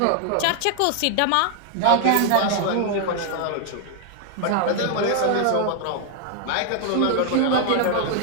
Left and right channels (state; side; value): different; both; correlation 0.00